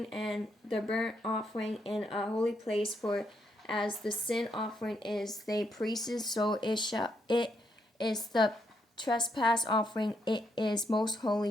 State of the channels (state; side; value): normal; both; correlation 0.77